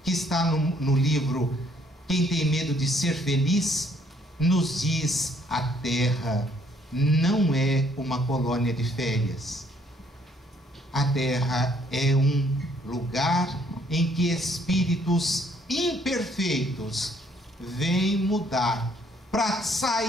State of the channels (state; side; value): normal; both; correlation 0.65